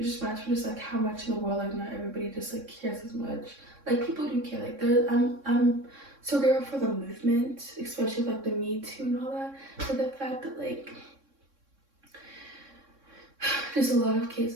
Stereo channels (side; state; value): left; late; 3.6 ms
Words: just reminds me just like how much in the world like not everybody just like cares as much. Like people do care. Like I'm so grateful for the movement, especially like the Me Too and all that. But the fact that like there's a lot of